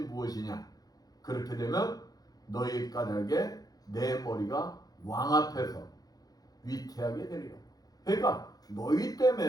무엇이냐. 그렇게 되면 너희 까닭에 내 머리가 왕 앞에서 위태하게 되리라. 그러니까 너희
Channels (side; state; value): right; late; 0.18 ms